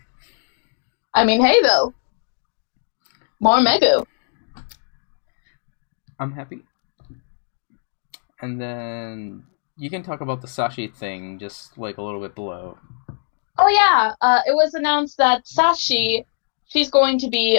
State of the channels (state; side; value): silent; right; digital silence